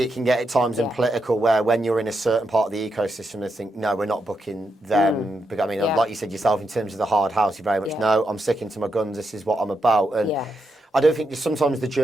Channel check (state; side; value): normal; both; correlation 0.83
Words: can get at times and political, where when you're in a certain part of the ecosystem they think, no, we're not booking them. But I mean, like you said yourself, in terms of the hard house, you very much no, I'm sticking to my guns, this is what I'm about. And I don't think sometimes the